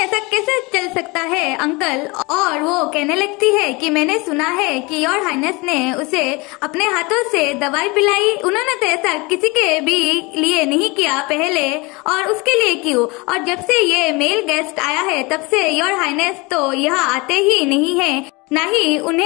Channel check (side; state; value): right; quieter; 25.8 dB